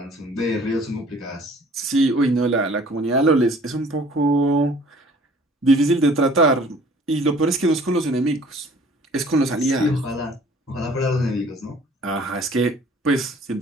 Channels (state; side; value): normal; both; correlation 0.53